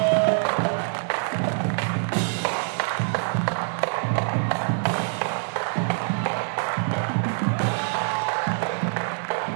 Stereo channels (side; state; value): left; silent; digital silence